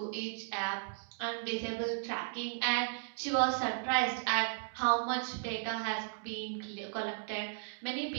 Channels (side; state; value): left; silent; digital silence